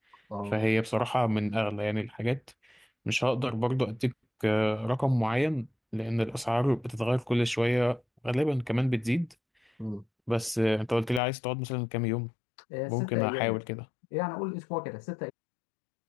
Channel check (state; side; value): drops out; right; at 11.2 s